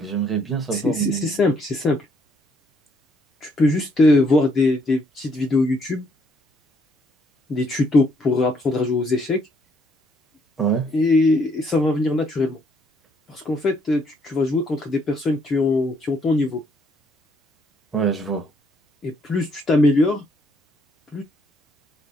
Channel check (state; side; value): normal; both; correlation 0.69